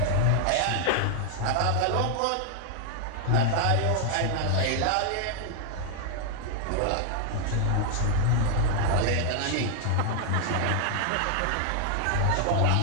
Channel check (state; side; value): different; both; correlation 0.00